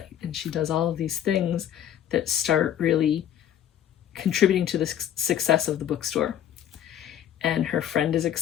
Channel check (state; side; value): quieter; right; 10.6 dB